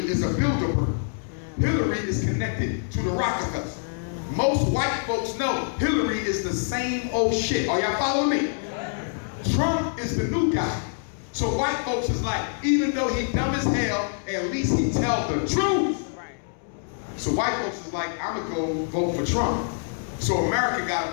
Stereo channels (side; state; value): right; silent; 61 dB below the other